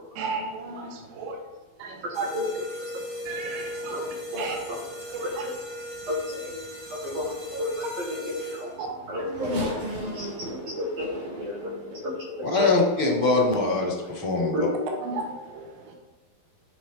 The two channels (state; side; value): late; left; 12 ms